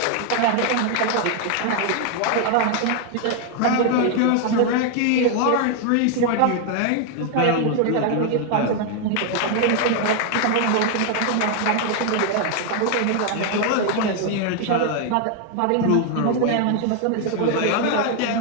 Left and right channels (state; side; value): different; both; correlation 0.00